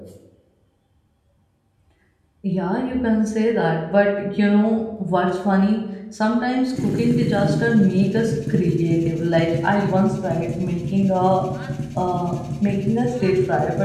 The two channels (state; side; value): identical; both; correlation 1.00